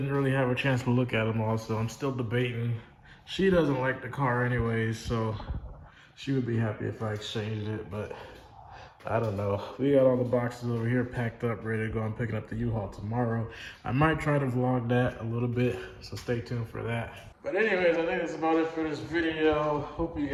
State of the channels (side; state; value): both; identical; correlation 1.00